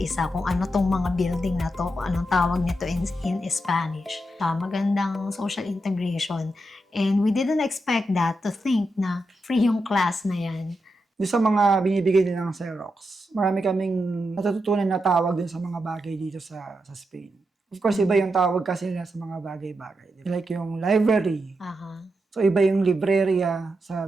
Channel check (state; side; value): normal; both; correlation 0.86